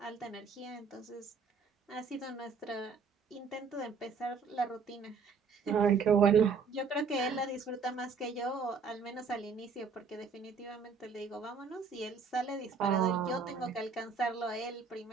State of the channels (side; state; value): left; quieter; 5.2 dB